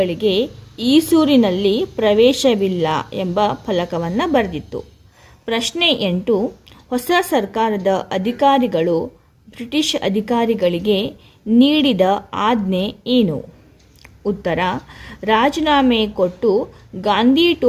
ಈಸೂರಿನಲ್ಲಿ ಪ್ರವೇಶವಿಲ್ಲ ಎಂಬ ಫಲಕವನ್ನು ಬರೆದಿತ್ತು. ಪ್ರಶ್ನೆ 8, ಹೊಸ ಸರ್ಕಾರದ ಅಧಿಕಾರಿಗಳು ಬ್ರಿಟಿಷ್ ಅಧಿಕಾರಿಗಳಿಗೆ ನೀಡಿದ ಆಜ್ಞೆ ಏನು? ಉತ್ತರ, ರಾಜೀನಾಮೆ ಕೊಟ್ಟು ಗಾಂಧಿ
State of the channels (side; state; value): both; identical; correlation 1.00